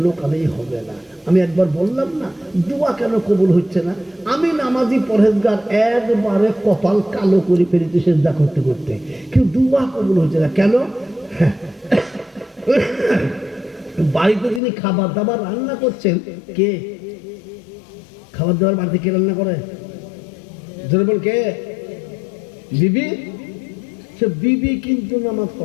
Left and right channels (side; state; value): right; drops out; at 14.6 s